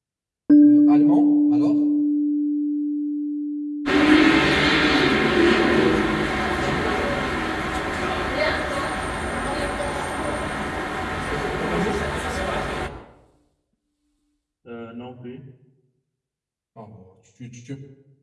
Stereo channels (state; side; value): identical; both; correlation 1.00